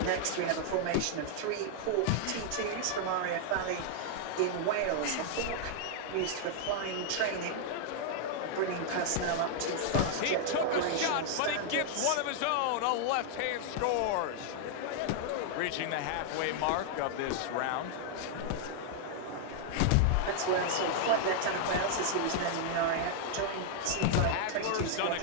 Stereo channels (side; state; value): both; different; correlation -0.01